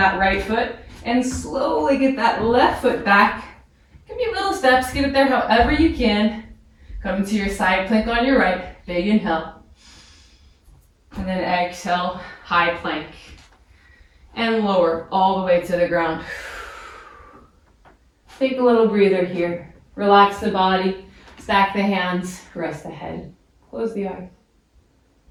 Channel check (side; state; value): both; identical; correlation 1.00